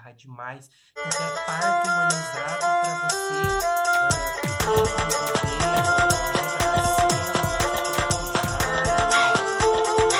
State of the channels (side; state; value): both; identical; correlation 1.00